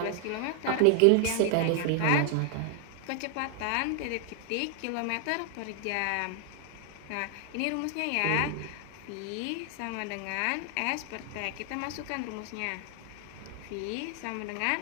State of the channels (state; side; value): different; both; correlation 0.00